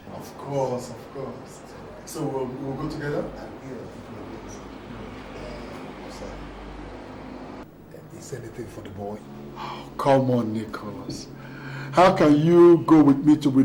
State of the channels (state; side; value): identical; both; correlation 1.00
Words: Of course, of course. So we'll go together? Is anything for the boy? Oh, come on, Nicolas. How can you go with me to